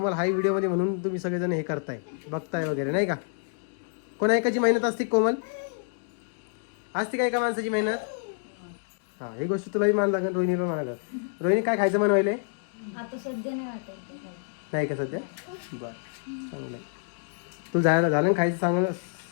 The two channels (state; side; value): silent; right; digital silence